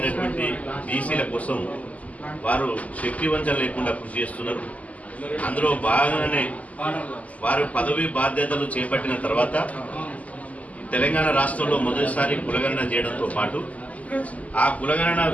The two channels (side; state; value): right; late; 0.072 ms